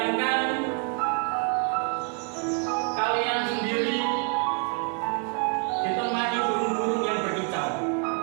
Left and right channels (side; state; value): left; quieter; 39.0 dB